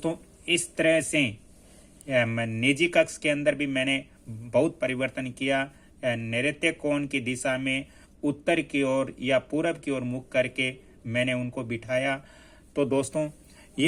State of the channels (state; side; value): identical; both; correlation 1.00